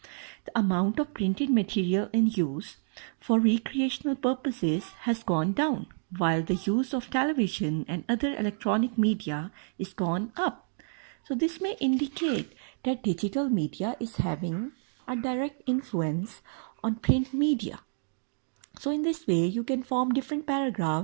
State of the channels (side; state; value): left; silent; digital silence